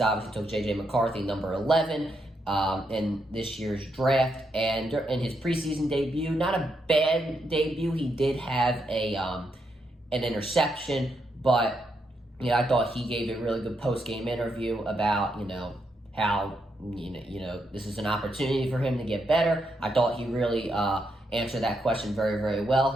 took J.J. McCarthy, number 11, in this year's draft, and in his preseason debut, not a bad debut. He did have an interception, but I thought he gave a really good post-game interview about how this is an opportunity for him to get better. I thought he really answered that question very, very well.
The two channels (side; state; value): both; normal; correlation 0.80